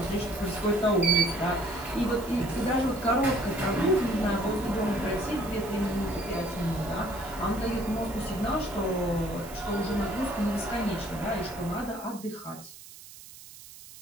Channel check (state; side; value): noise; right; hiss, 17 dB below the sound